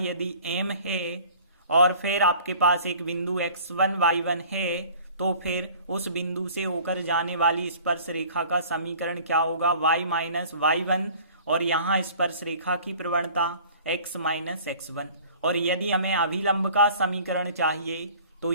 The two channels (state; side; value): inverted; both; correlation -0.48